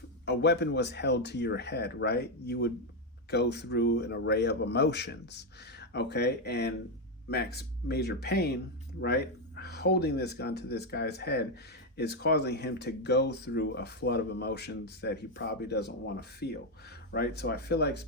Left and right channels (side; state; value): both; normal; correlation 0.04